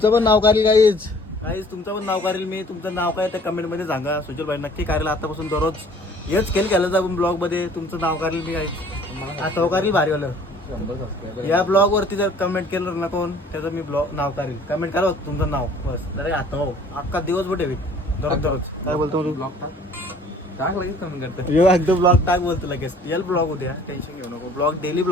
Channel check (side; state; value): both; normal; correlation 0.53